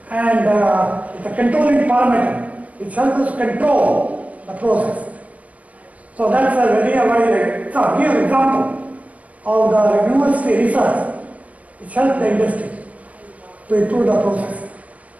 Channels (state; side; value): late; left; 0.069 ms